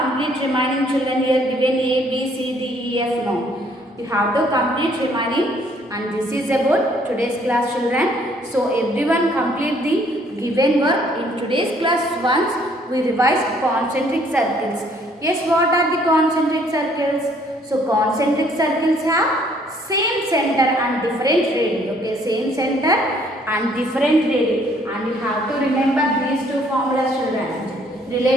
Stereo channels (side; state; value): both; normal; correlation 0.63